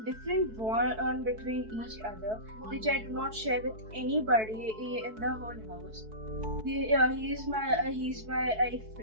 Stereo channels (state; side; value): late; left; 4.6 ms